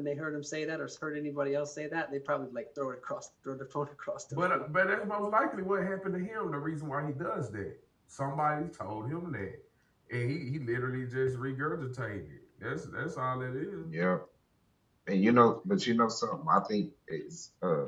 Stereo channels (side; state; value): both; identical; correlation 1.00